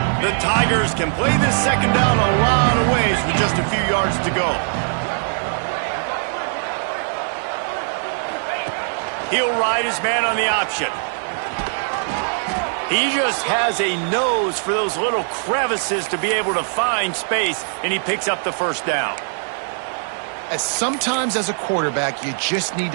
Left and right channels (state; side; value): silent; left; 65 dB below the other